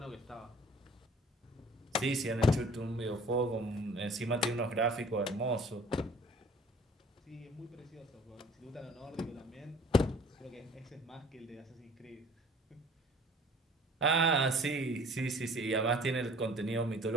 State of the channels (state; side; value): normal; both; correlation 0.51